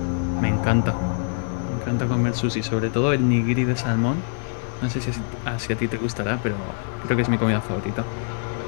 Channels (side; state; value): right; silent; digital silence